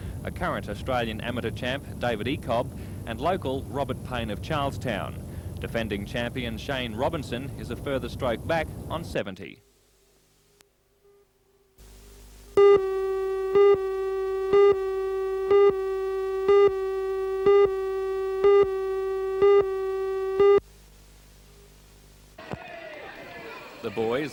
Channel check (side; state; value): both; identical; correlation 1.00